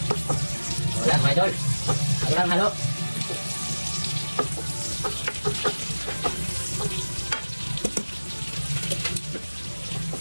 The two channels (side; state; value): both; inverted; correlation -1.00